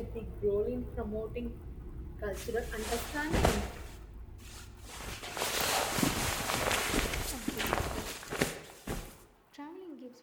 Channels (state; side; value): identical; both; correlation 1.00